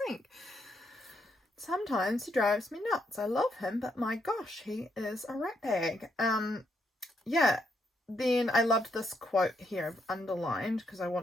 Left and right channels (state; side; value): normal; both; correlation 0.76